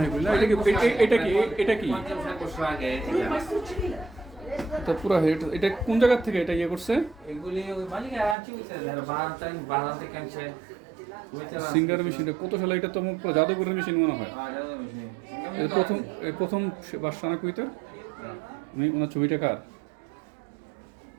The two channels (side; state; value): left; drops out; at 8.3 s